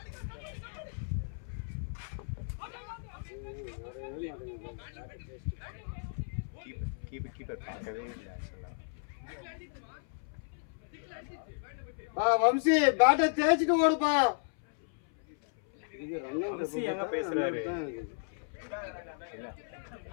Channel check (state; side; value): silent; right; 55 dB below the other